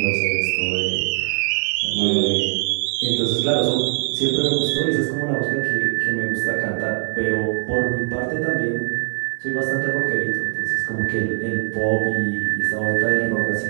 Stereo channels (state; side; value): silent; left; 61 dB below the other